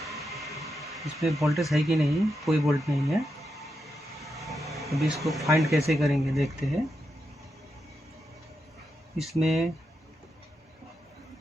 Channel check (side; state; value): both; normal; correlation 0.85